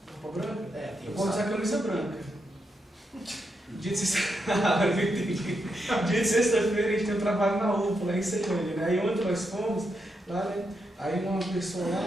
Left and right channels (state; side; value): normal; both; correlation 0.83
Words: Roupa branca? É, tem Eu vou usar camisa branca. Dia de sexta-feira a gente tem um trabalho na UPA, lá em Ceilândia, né? Aí ontem nós fomos lá, né? Aí uma pessoa